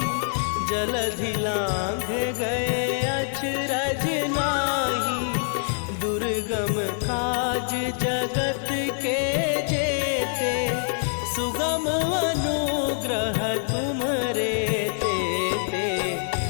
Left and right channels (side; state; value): right; silent; digital silence